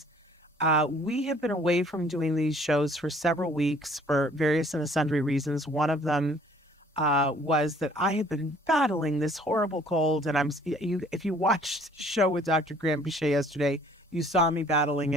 We have been away from doing these shows for several weeks for various and sundry reasons. One of them was that I have been battling this horrible cold, and if you watched the show with Dr. Graham Pichet yesterday, you saw me battling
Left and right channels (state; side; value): normal; both; correlation 0.57